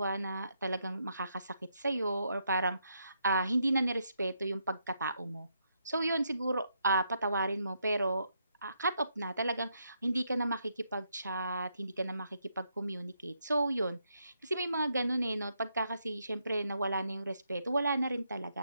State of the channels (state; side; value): inverted; both; correlation -0.78